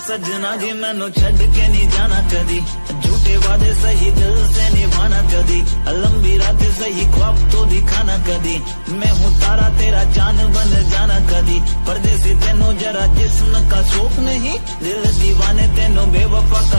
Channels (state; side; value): inverted; both; correlation -1.00